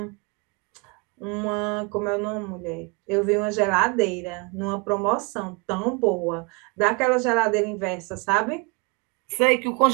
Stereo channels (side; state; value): left; quieter; 29.6 dB